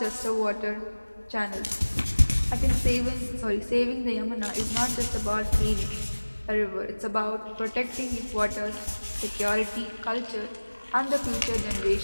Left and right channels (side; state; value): both; inverted; correlation -1.00